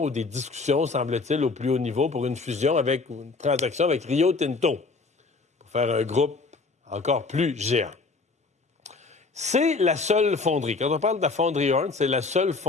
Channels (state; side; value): quieter; right; 4.0 dB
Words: ou des discussions, semble-t-il, au plus haut niveau pour une fusion avec une transaction avec Rio Tinto pour faire un groupe encore plus géant. C'est la seule fonderie. Quand on parle de la fonderie Horn, c'est la seule